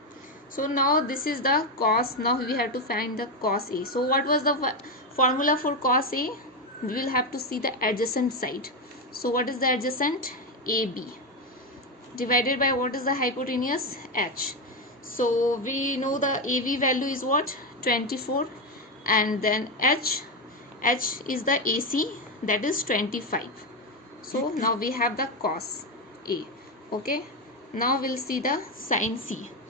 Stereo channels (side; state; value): both; normal; correlation 0.11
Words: So now this is the cos. Now we have to find the cos A. So what was the formula for cos A? We will have to see the adjacent side. So what is the adjacent? AB divided by what is the hypotenuse? H. So we know the AB value is what? 24, and then H is the AC, that is 25. So now we have the cos A. Okay, now we'll see the sin C.